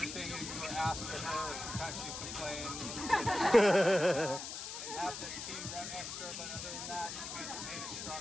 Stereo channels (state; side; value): noise; left; hiss, 7 dB below the sound